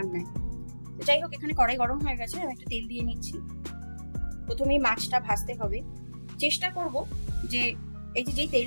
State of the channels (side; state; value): both; inverted; correlation -1.00